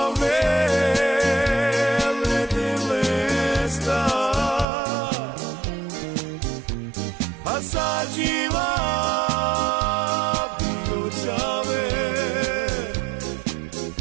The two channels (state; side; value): drops out; left; at 4.7 s